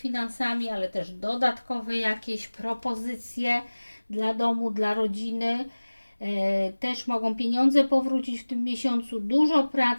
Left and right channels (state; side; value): inverted; both; correlation -1.00